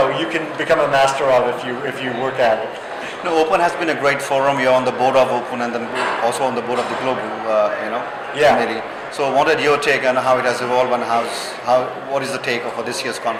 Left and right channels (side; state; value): both; identical; correlation 1.00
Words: you can become a master of if you work at it. Open has been a great forum. You're on the board of Open and then also on the board of the Global, committee. So what is your take on how it has evolved, and what is the take for this year's